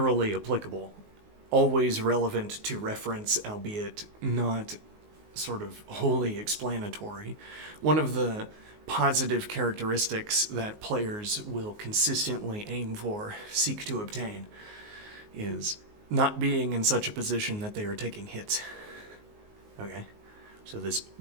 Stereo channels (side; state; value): left; late; 19 ms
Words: applicable, always relevant to reference, albeit not sort of wholly explanatory. One of the positive characteristics that players will consistently aim for, seek to obtain, is not being in such a position that they are taking hits. Okay? So this